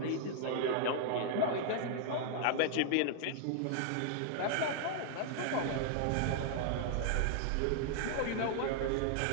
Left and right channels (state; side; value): different; both; correlation 0.00